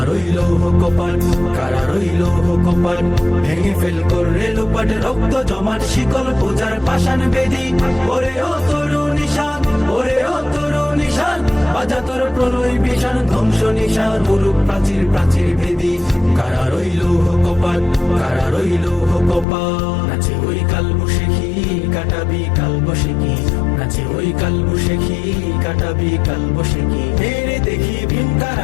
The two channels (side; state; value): right; drops out; at 19.5 s